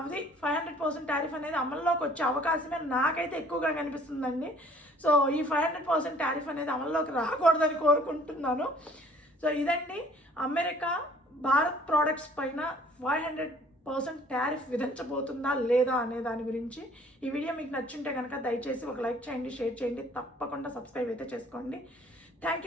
500% టారిఫ్ అనేది అమల్లోకి వచ్చే అవకాశమే నాకైతే ఎక్కువగా కనిపిస్తుందండి. సో ఈ 500% టారిఫ్ అనేది అమల్లోకి రాకూడదని కోరుకుంటున్నాను. సో ఇదండి అమెరికా భారత్ ప్రోడక్ట్స్ పైన 500% టారిఫ్ విధించబోతుందా లేదా అనే దాని గురించి. ఈ వీడియో మీకు నచ్చుంటే కనుక దయచేసి ఒక లైక్ చేయండి, షేర్ చేయండి, తప్పకుండా సబ్స్క్రైబ్ అయితే చేసుకోండి. Thank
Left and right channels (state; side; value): normal; both; correlation 0.56